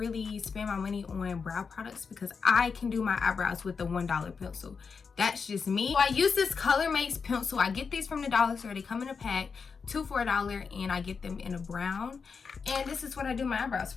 spend my money on brow products because I can do my eyebrows with the $1 pencil. That's just me. So I use this Color Makes pencil. I get these from the dollar store. They come in a pack, 2 for $1, and I get them in a brown. And this is what I do my eyebrows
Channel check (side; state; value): right; quieter; 5.5 dB